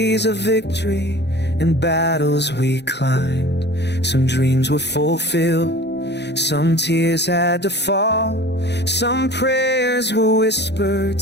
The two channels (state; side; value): late; right; 0.50 ms